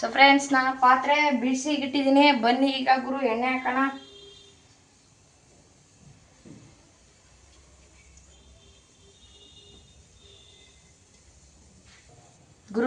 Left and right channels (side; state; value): both; identical; correlation 1.00